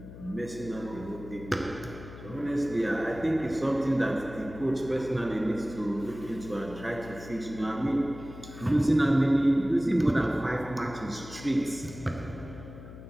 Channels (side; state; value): left; noise; hum, 14 dB below the sound